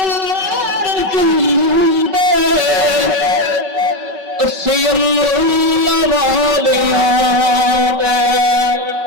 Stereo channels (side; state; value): left; late; 5.3 ms